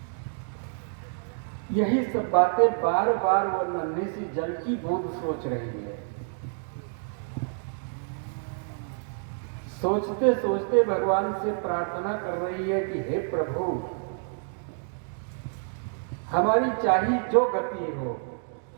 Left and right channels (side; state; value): left; silent; 59 dB below the other